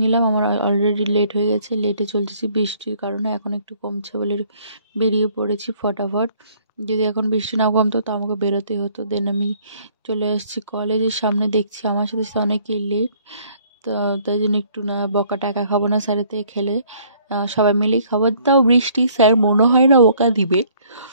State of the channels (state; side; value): inverted; both; correlation -0.61